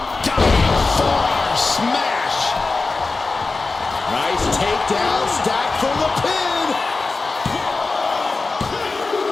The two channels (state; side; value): quieter; right; 3.8 dB